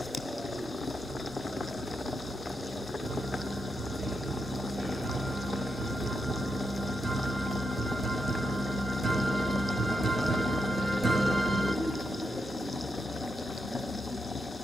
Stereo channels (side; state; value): both; normal; correlation 0.84